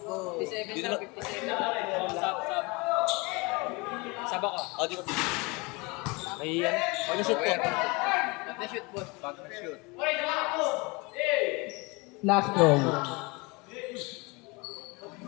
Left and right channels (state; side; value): quieter; right; 26.9 dB